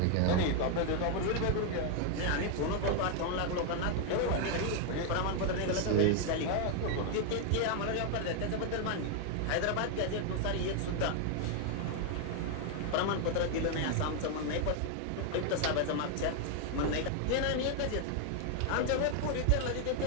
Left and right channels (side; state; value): both; different; correlation 0.00